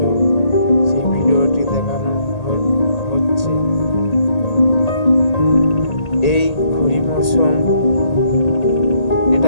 সেই ভিডিওটি দেখানো হচ্ছে। এই খরিফ মৌসুম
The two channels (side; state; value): right; late; 1.8 ms